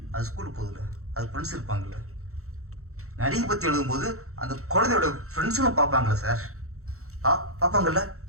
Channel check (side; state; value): left; late; 0.64 ms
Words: அது ஸ்கூலுக்கு போகுதுல்ல, அது ஃப்ரெண்ட்ஸ் இருப்பாங்கல்ல, நடிகை பற்றி எழுதும்போது அந்த குழந்தையோட ஃப்ரெண்ட்ஸும் பார்ப்பாங்களே சார், பார்ப்பாங்கல்ல,